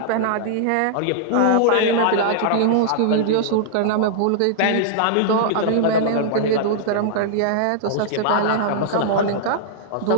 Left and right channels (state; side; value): different; both; correlation -0.01